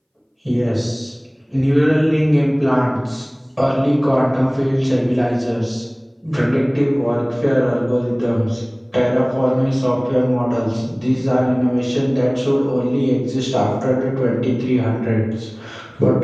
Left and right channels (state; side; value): identical; both; correlation 1.00